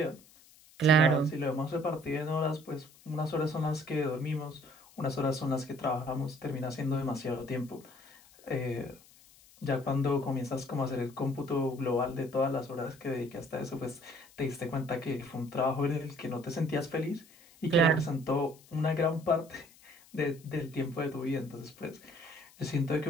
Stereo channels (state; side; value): noise; left; hiss, 25 dB below the sound